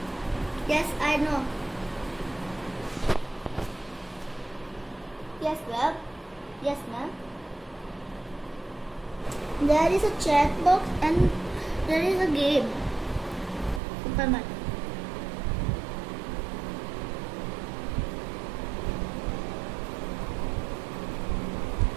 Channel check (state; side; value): drops out; left; at 13.8 s